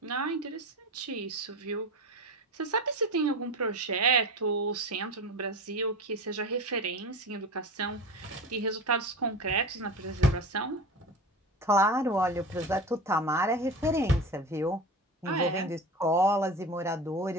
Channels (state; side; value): normal; both; correlation 0.29